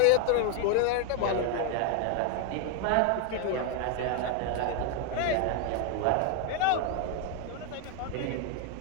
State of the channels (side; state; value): both; different; correlation 0.01